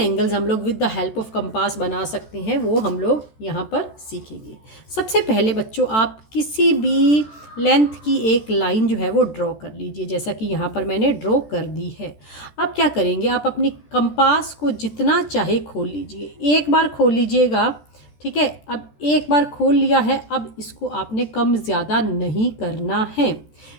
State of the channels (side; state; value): right; late; 14 ms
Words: हम लोग with the help of compass बना सकते हैं वो हम लोग यहाँ पर सीखेंगे। सबसे पहले बच्चों आप किसी भी लेंथ की एक लाइन जो है वो ड्रॉ कर लीजिए, जैसा कि यहाँ पर मैंने ड्रॉ कर दी है। अब क्या करेंगे, आप अपनी कंपास को जितना चाहे खोल लीजिए, एक बार खोल लीजिएगा, ठीक है। अब एक बार खोल लिया है, अब इसको आपने कम ज़्यादा नहीं करना है।